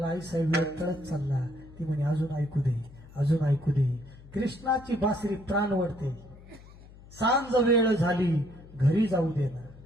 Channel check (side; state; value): left; noise; hum, 20 dB below the sound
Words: आई साहेब वेळ टळत चालला. ती म्हणे अजून ऐकू दे अजून ऐकू दे. कृष्णाची बासरी प्राण वळते. सांज वेळ झाली घरी जाऊ दे ना.